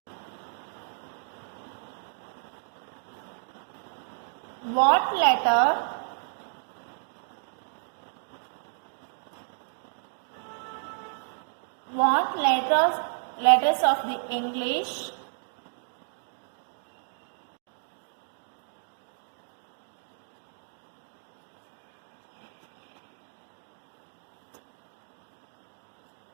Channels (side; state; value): left; silent; digital silence